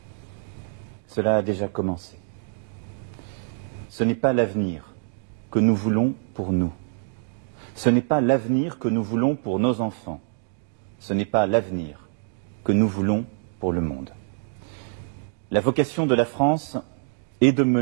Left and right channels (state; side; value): silent; left; digital silence